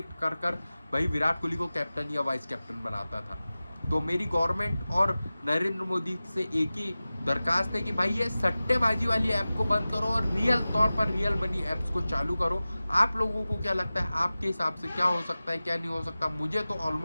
कर भाई विराट कोहली को कैप्टन या वाइस कैप्टन बनाता था। तो मेरी गवर्नमेंट और नरेंद्र मोदी से एक ही दरखास्त है कि भाई ये सट्टेबाजी वाली ऐप को बंद करो और रियल तौर पर रियल मनी ऐप्स को चालू करो। आप लोगों को क्या लगता है, आपके हिसाब से क्या हो सकता है, क्या नहीं हो सकता? मुझे तो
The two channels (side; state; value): both; inverted; correlation -0.96